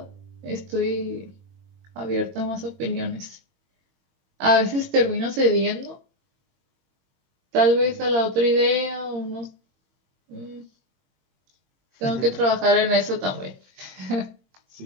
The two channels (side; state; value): left; late; 22 ms